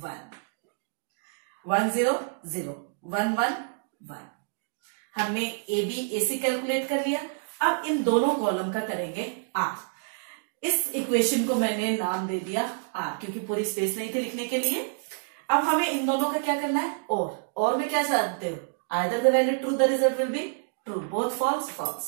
1 0 0 1 1 1। हमने AB AC कैलकुलेट कर लिया। अब इन दोनों कॉलम का करेंगे R। इस इक्वेशन को मैंने नाम दे दिया R, क्योंकि पूरी स्पेस नहीं थी लिखने के लिए। अब हमें इन दोनों का क्या करना है? और में क्या चाहते हो? Either the value true the result will be true, both false false,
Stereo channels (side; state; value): left; silent; digital silence